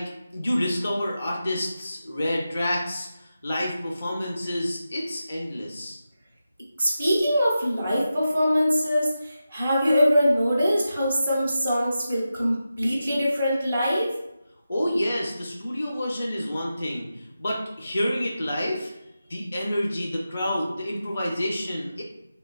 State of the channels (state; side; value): inverted; both; correlation -0.91